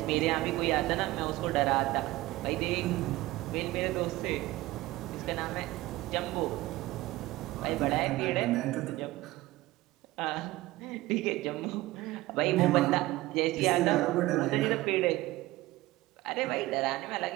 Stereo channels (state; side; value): quieter; left; 18.4 dB